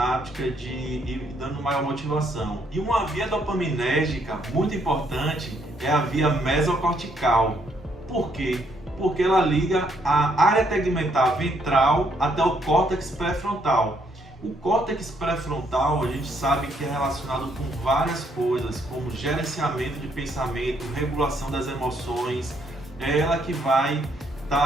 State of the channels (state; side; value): normal; both; correlation 0.71